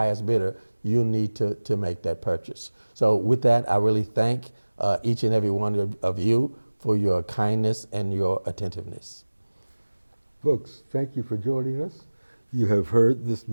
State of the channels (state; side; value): inverted; both; correlation -1.00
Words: bidder, you'll need to make that purchase. So with that, I really thank each and every one of you for your kindness and your attentiveness. Folks, thank you for joining us. You have heard this